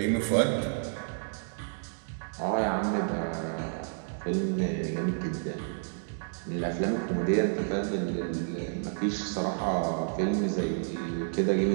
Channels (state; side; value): silent; left; digital silence